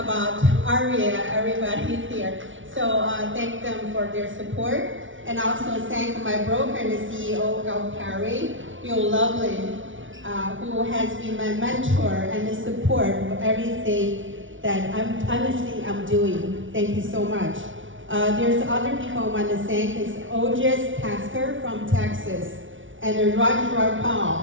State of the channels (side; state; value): left; late; 0.56 ms